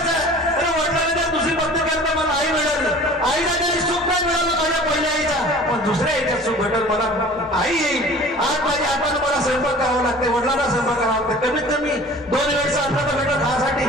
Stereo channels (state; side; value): normal; both; correlation 0.44